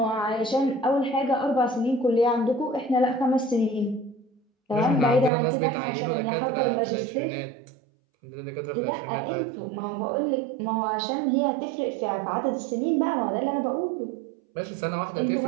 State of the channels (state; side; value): drops out; left; at 5.3 s